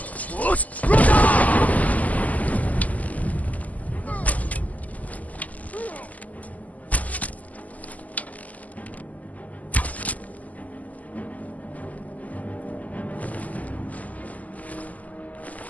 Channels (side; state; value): right; late; 0.076 ms